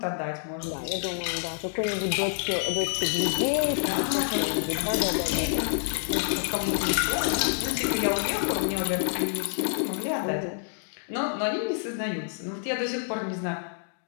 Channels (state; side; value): silent; right; digital silence